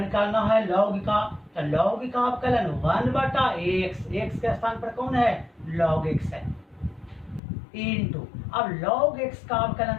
करना है log का, तो log का अवकलन 1/x, x के स्थान पर कौन है log x है, इंटू अब log x का अवकलन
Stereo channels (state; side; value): drops out; right; at 7.4 s